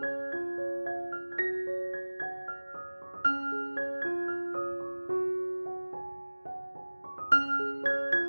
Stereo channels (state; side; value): inverted; both; correlation -1.00